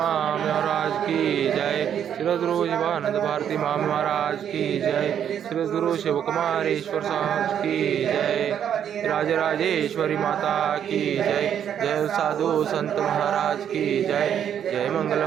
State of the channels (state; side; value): quieter; left; 9.1 dB